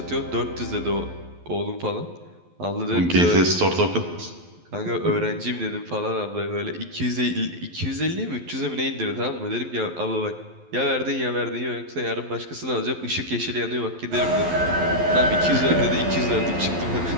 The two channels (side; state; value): left; late; 12 ms